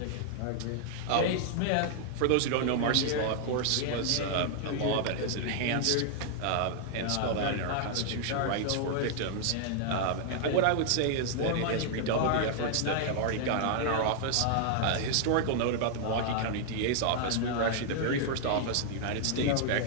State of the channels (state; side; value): different; both; correlation 0.00